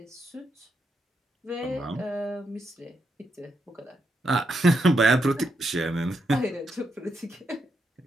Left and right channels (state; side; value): normal; both; correlation 0.81